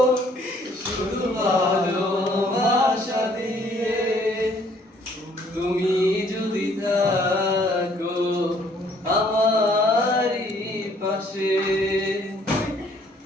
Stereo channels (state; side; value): normal; both; correlation 0.62